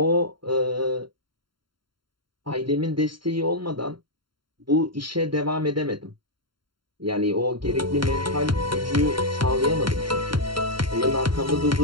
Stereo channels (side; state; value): left; late; 0.73 ms